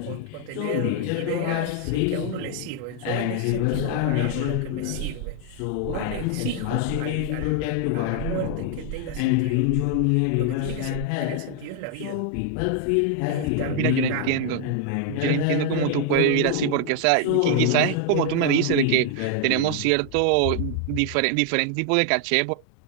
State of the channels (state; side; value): different; both; correlation 0.00